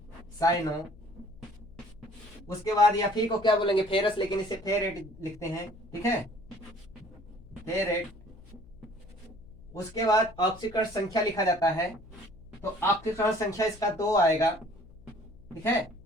साइनो। उसके बाद Fe को क्या बोलेंगे, फेरस, लेकिन इसे फेरेट लिखते हैं, ठीक है, फेरेट। उसके बाद ऑक्सीकरण संख्या लिखा जाता है, तो ऑक्सीकरण संख्या इसका 2 आएगा, ठीक है,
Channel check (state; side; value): noise; left; hum, 22 dB below the sound